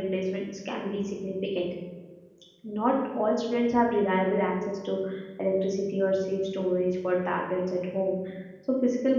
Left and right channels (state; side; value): identical; both; correlation 1.00